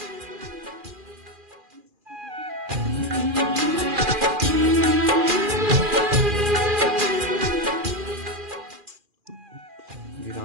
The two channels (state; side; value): late; left; 2.4 ms